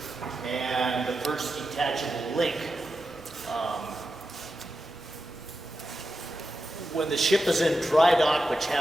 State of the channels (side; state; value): both; normal; correlation 0.90